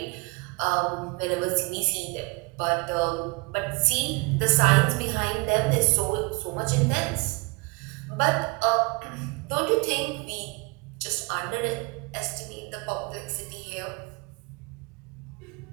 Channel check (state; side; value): quieter; left; 27.8 dB